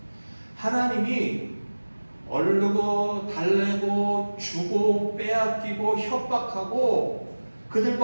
하나님이 얼르고 달래고 주고 빼앗기고 협박하고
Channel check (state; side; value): inverted; both; correlation -1.00